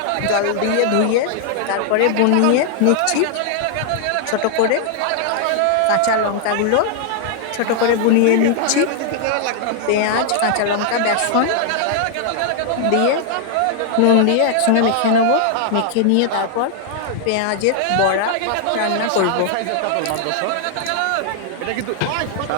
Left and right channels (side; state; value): both; different; correlation 0.00